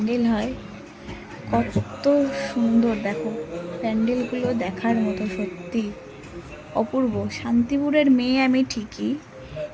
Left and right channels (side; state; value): both; identical; correlation 1.00